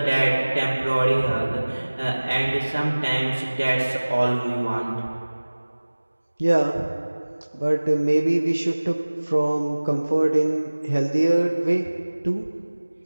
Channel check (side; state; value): both; inverted; correlation -1.00